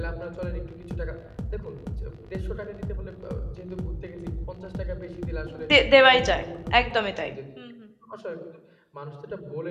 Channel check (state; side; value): identical; both; correlation 1.00